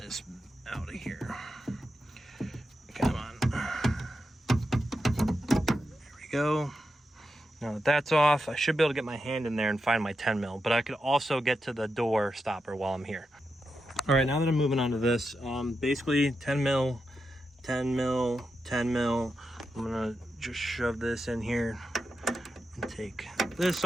out of here. Come on, there we go. Now that that's off, I should be able to get my hand in there and find my 10mm, but I could also get to the door stopper while I'm here. All right, now that I'm moving on to this, basically 10mm, 10mm, 10mm. I'm gonna just shove this in here and take this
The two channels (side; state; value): both; normal; correlation 0.87